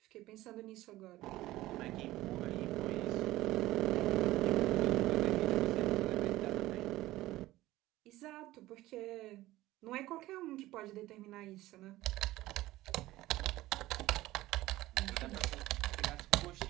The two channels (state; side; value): quieter; left; 16.9 dB